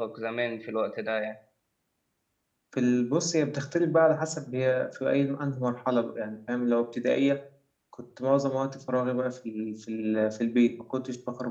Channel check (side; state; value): both; identical; correlation 1.00